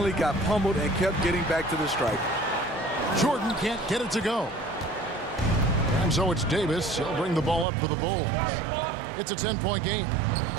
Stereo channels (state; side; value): drops out; left; at 7.7 s